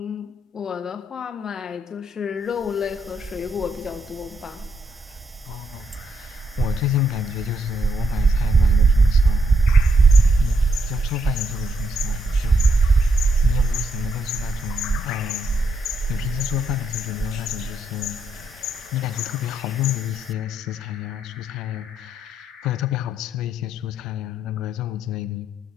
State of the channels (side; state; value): both; normal; correlation 0.77